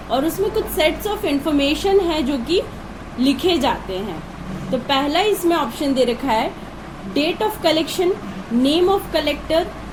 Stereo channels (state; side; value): identical; both; correlation 1.00